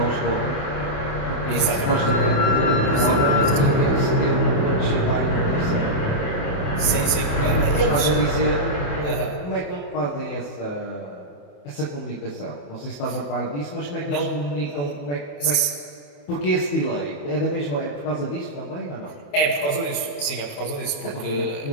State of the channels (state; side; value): late; right; 28 ms